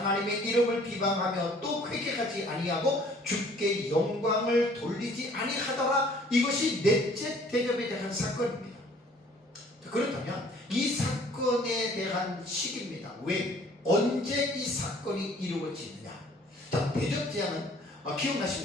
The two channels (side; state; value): both; normal; correlation 0.55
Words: 이름을 비방하며 또 회개하지 아니하고 주께 영광을 돌리지 아니하더라. 이것이 넷째 대접에 대한 사건입니다. 그렇다면 이 사건에 대한 시기입니다. 왜? 언제 이 사건이 이루어지느냐? 자, 대접 재앙은